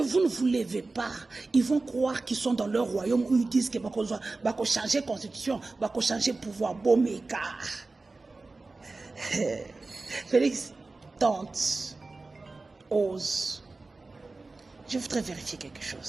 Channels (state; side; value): quieter; left; 3.5 dB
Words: ne vous levez pas, ils vont croire qu'ils sont dans leur royaume où ils disent que bako changer constitution, bako changer pouvoir, bomeka. Félix tente. Ose. Je voudrais vérifier quelque